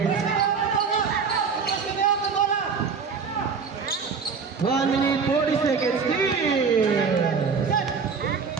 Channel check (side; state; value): left; quieter; 5.6 dB